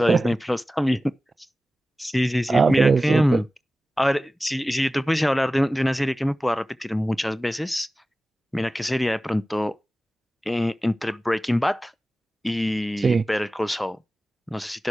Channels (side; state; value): both; normal; correlation 0.95